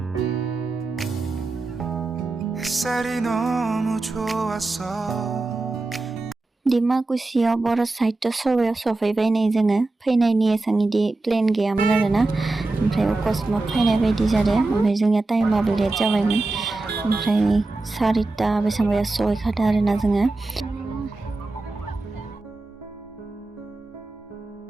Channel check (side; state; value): left; quieter; 3.2 dB